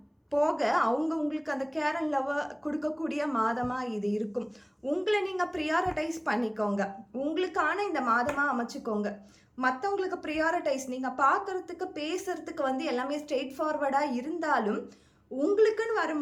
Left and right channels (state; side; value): identical; both; correlation 1.00